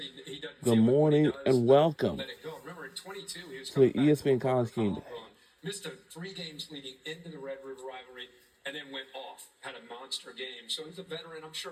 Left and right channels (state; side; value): identical; both; correlation 1.00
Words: Good morning and welcome let it go. Remember, in 22, he was to the coming back ESPN College Game Day. missed 3 games leading into the Red River rivalry, and then went off, had a monster game. So he's a veteran. I'm